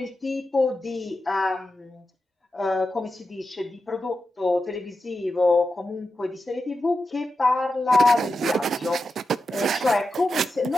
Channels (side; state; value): both; normal; correlation 0.90